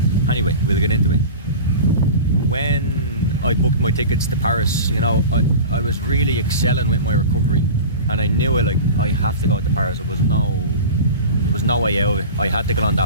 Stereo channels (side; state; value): both; inverted; correlation -0.33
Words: Anyway, we'll get into it. When I booked my tickets to Paris, I was really excelling with my recovery, and I knew I have to go to Paris. There was no way out of it. I had to get on